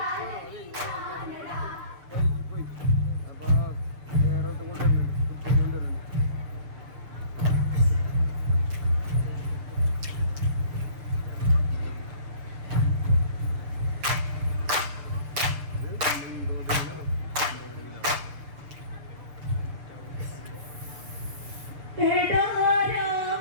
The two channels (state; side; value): late; left; 6.7 ms